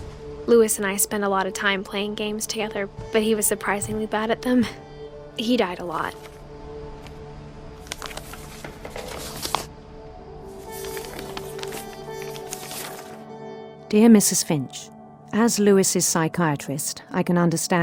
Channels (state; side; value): identical; both; correlation 1.00